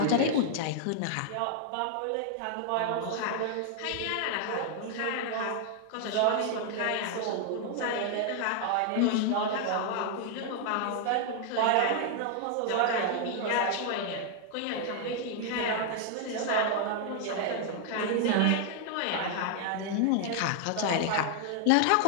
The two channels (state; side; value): different; both; correlation 0.00